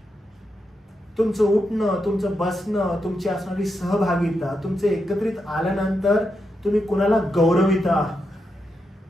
तुमचं उठणं, तुमचं बसणं, तुमची असणारी सहभागिता, तुमचे एकत्रित आल्यानंतर तुम्ही कुणाला गौरविता,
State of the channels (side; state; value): both; normal; correlation 0.85